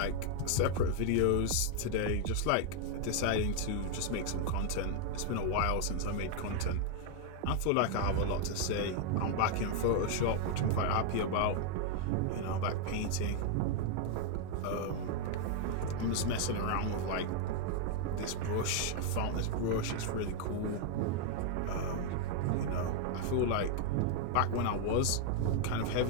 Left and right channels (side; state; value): both; different; correlation 0.00